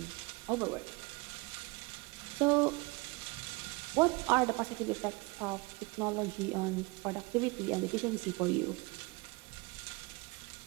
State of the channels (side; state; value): left; quieter; 26.1 dB